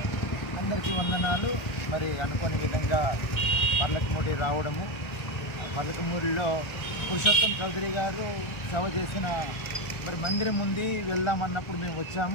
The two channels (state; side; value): late; right; 1.3 ms